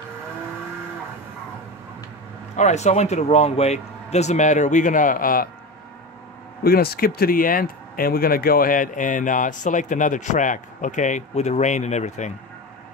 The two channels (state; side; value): normal; both; correlation 0.24